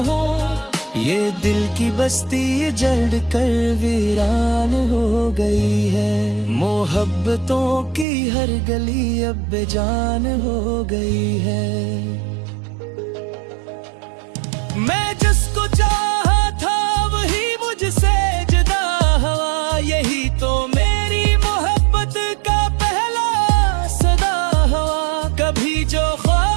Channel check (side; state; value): left; drops out; at 8.1 s